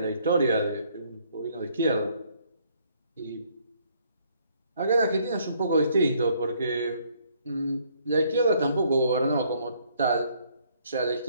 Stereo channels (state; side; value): inverted; both; correlation -0.66